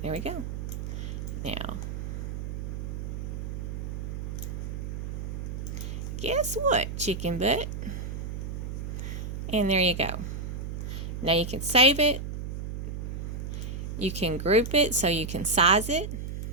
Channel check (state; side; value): noise; right; hum, 5 dB below the sound